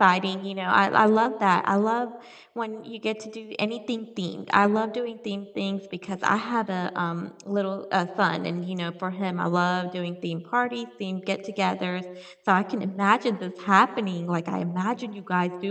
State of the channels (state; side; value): identical; both; correlation 1.00